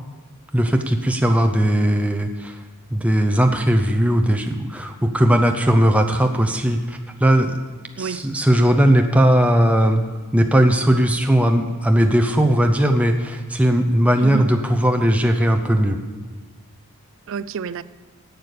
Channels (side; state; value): both; normal; correlation 0.90